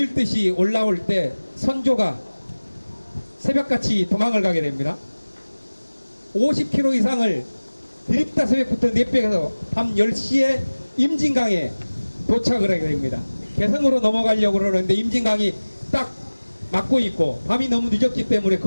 올라올 때 선조가 새벽같이 도망을 가게 됩니다. 50km 이상을 드립다 새벽부터 내빼서 밤 10시에 임진강에 도착을 하게 됩니다. 개성으로 넘어가려고 그러는데 임진강이 딱 막고 있고 밤이 너무 늦었기 때문에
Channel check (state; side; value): inverted; both; correlation -1.00